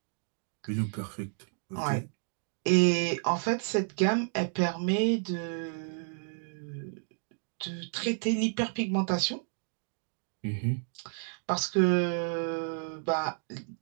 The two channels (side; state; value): left; silent; 57 dB below the other